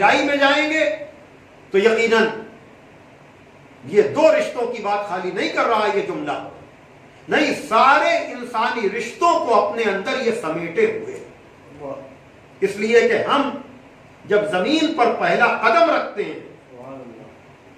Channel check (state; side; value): identical; both; correlation 1.00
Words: میں جائیں گے تو یقیناً یہ دو رشتوں کی بات خالی نہیں کر رہا یہ جملہ، نہیں، سارے انسانی رشتوں کو اپنے اندر یہ سمیٹے ہوئے، اس لیے کہ ہم جب زمین پر پہلا قدم رکھتے ہیں سبحان اللہ،